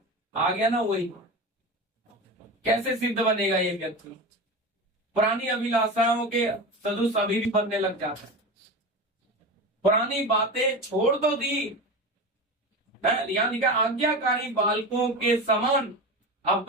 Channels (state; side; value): normal; both; correlation 0.26